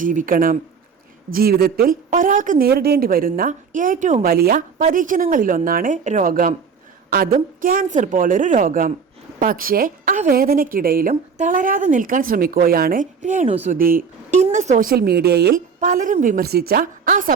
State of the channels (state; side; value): quieter; left; 5.9 dB